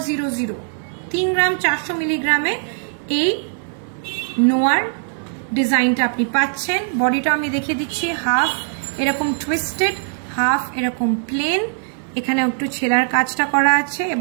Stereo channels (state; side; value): silent; left; 58 dB below the other